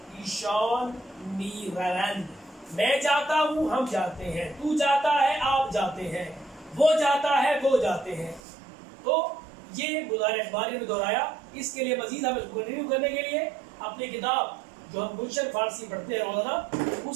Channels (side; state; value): left; drops out; at 8.4 s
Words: ईशान मी रवंद। मैं जाता हूं, हम जाते हैं, तू जाता है, आप जाते हैं, वो जाता है, वो जाते हैं। तो ये मुजारे अखबारी में दोहराया। इसके लिए मजीद हम इसको कंटिन्यू करने के लिए अपनी किताब जो हम गुलशन फारसी पढ़ते हैं रोजाना,